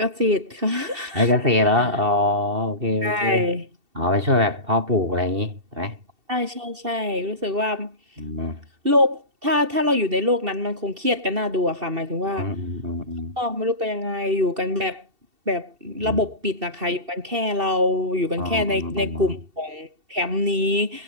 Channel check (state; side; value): late; left; 2.7 ms